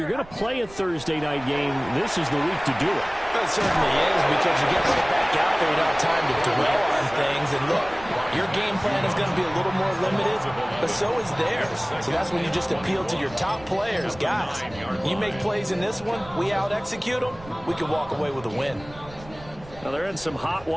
going to play a Thursday night game, this is the week to do it. It certainly is, because you get right back out there without time to dwell on things. And look, your game plan is going to be a little more limited, but so is theirs. So that's when you just appeal to your top players. Guys, you make plays in this one, we out-execute them, we can walk away with a win. Now they're in some hot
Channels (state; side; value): noise; right; rumble, 19 dB below the sound